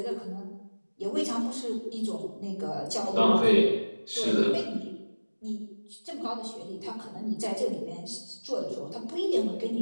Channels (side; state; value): both; inverted; correlation -1.00